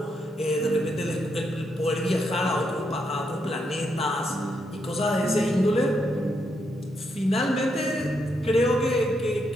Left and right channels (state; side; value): normal; both; correlation 0.80